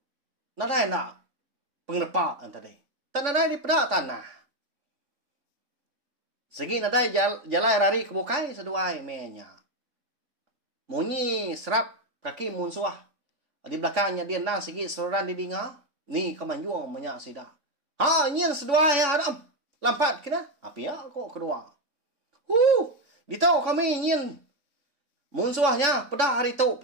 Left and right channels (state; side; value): late; left; 3.5 ms